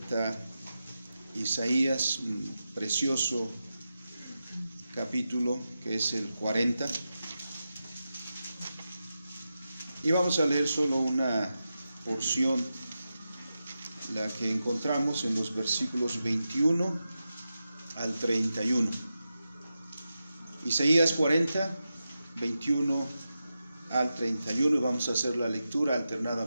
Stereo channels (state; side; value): inverted; both; correlation -0.91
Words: Isaías, un precioso capítulo que es el 40. Y vamos a leer solo una porción, la que encontramos en los versículos 21 al 31. Isaías 40, 21 al 31, y vamos a hacer la lectura